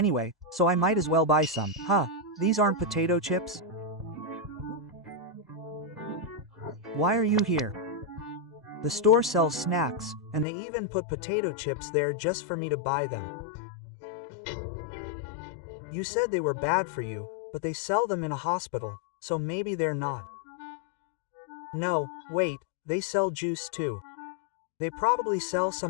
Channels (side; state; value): right; drops out; at 10.5 s